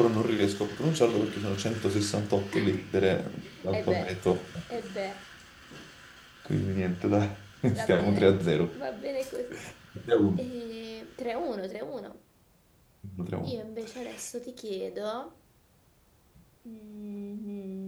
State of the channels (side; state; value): both; identical; correlation 1.00